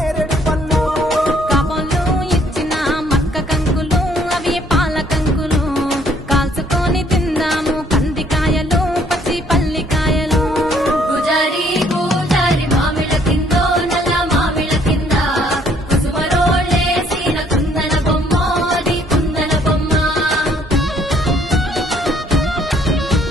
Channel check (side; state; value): both; normal; correlation 0.64